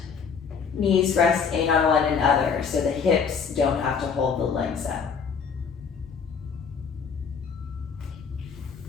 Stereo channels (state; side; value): quieter; right; 6.2 dB